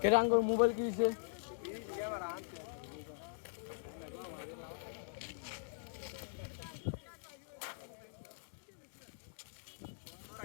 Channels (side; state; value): right; silent; digital silence